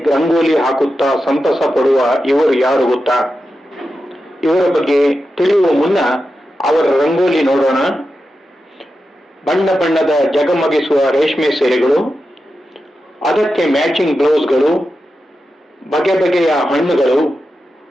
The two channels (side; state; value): both; normal; correlation 0.90